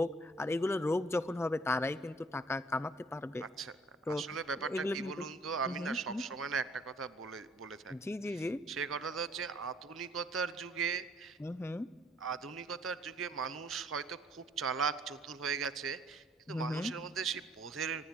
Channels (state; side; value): normal; both; correlation 0.60